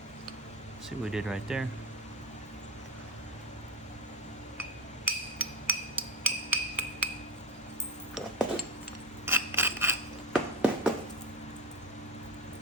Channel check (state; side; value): normal; both; correlation 0.19